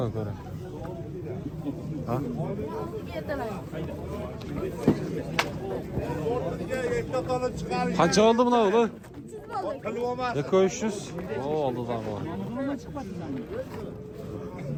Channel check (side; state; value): both; identical; correlation 1.00